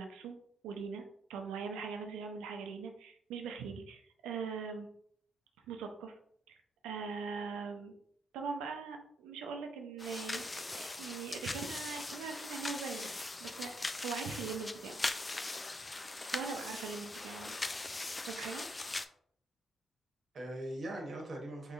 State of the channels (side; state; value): both; normal; correlation 0.74